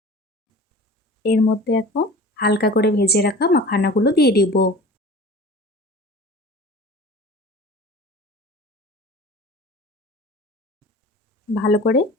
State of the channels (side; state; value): both; normal; correlation 0.40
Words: এর মধ্যে এখন হালকা করে ভেজে রাখা মাখানাগুলো দিয়ে দিব। ভালো করে